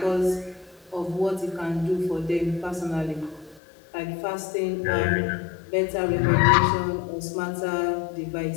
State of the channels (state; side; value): drops out; right; at 3.6 s